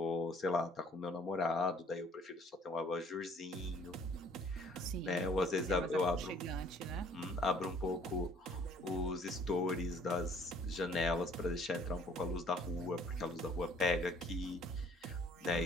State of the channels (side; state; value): both; normal; correlation 0.58